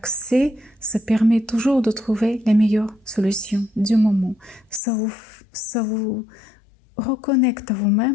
ça permet toujours de trouver la meilleure solution du moment. Ça vous reconnecte à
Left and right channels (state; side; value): drops out; right; at 4.8 s